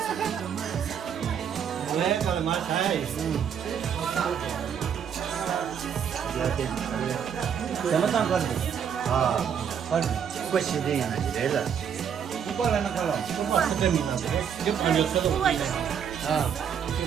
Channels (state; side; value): quieter; left; 7.9 dB